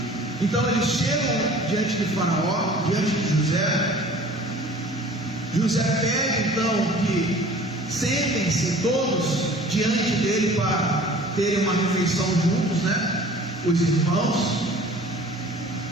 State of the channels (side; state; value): both; normal; correlation 0.47